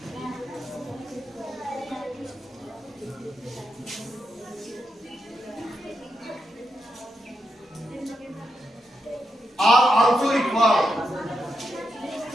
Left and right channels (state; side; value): normal; both; correlation 0.85